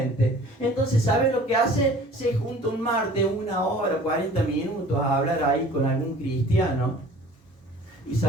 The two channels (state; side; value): normal; both; correlation 0.47